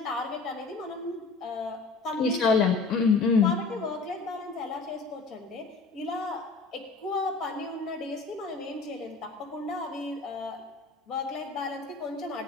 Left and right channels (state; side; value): quieter; right; 4.1 dB